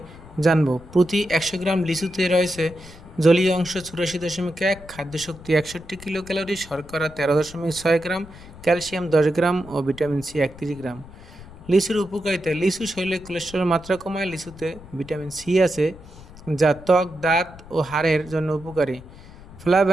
জানবো। প্রতি ১০০ গ্রাম লিচুতে রয়েছে জলীয় অংশ ৮৪.১, খাদ্যশক্তি ৬১ কিলো ক্যালোরি, শর্করা ১৩.৬ গ্রাম, ক্যালসিয়াম ১০ গ্রাম ও ভিটামিন সি ৩১ গ্রাম। লিচুর উপকারিতা: লিচু শরীরে কোলেস্টেরলের মাত্রা কমায়। লিচুতে ভিটামিন সি আছে, যা ত্বক, দাঁত ও হাড়ের জন্য উপকারী।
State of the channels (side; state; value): left; noise; rumble, 19 dB below the sound